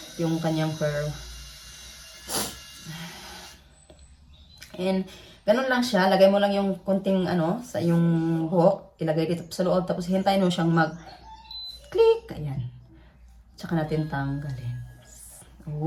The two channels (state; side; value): identical; both; correlation 1.00